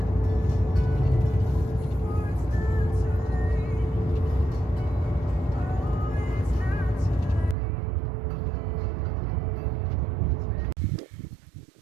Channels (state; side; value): drops out; left; at 7.6 s